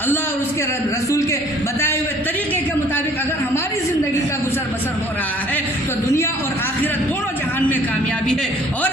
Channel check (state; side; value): normal; both; correlation 0.55